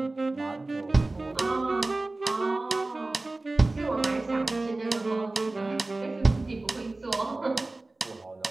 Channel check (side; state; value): left; quieter; 3.0 dB